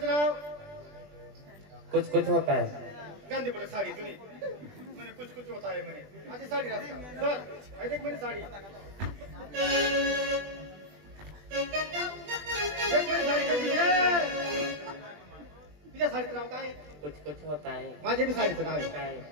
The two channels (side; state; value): left; late; 20 ms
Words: नाव कुछ कुछ होता है गांधी पडत साडी तुझी म्हणे कुछ कुछ होत आहे म्हणे माझी साडी राहता सर ऐक म्हणे साडी एक म्हणे साडी कशी आहे तुझ्या साडीचं नाव काय कुछ कुछ होता है माझे बी साडीचं नाव आहे काय